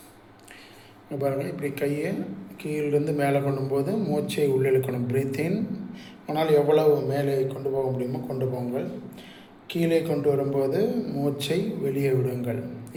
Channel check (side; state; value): both; identical; correlation 1.00